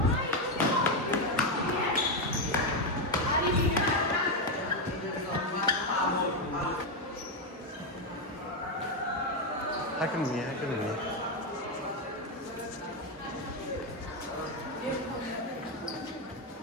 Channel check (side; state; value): both; normal; correlation 0.06